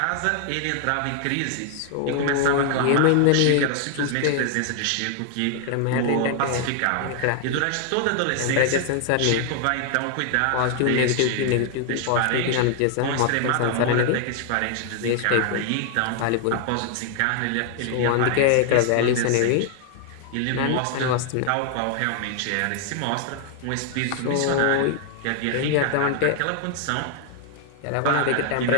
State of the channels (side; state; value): both; different; correlation 0.00